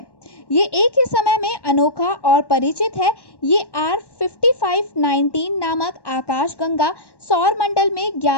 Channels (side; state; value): right; late; 1.1 ms